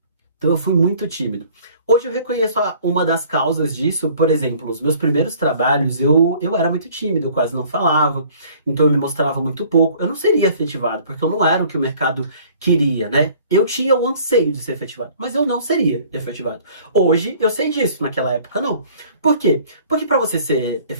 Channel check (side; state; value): both; inverted; correlation -0.53